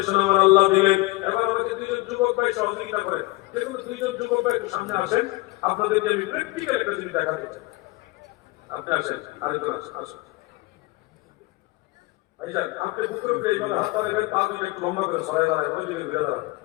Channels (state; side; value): quieter; right; 22.3 dB